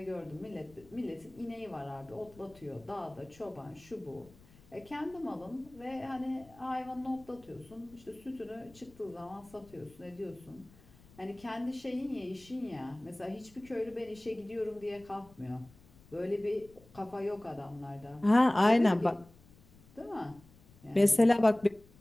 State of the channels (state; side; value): noise; left; rumble, 25 dB below the sound